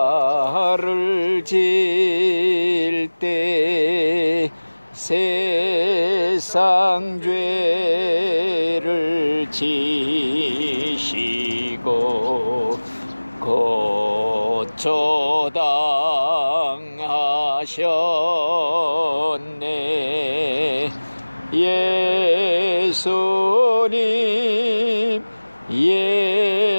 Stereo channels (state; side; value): inverted; both; correlation -1.00